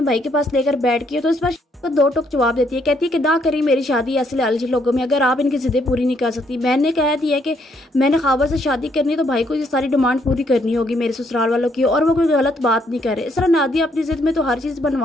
भाई के पास लेकर बैठ गई। तो इस पर तो दो टोक जवाब देती है, कहती है कि ना करी मेरी शादी ऐसे लालची लोगों में, अगर आप इनकी ज़िद्दें पूरी नहीं कर सकती। मैंने कह दिया कि मैंने ख्वाबा से शादी करनी है तो भाई को ये सारी डिमांड पूरी करनी होगी मेरे ससुराल वालों की, और वो कोई गलत बात नहीं करे। इस तरह नादिया अपनी ज़िद में तो हर चीज़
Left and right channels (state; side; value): normal; both; correlation 0.71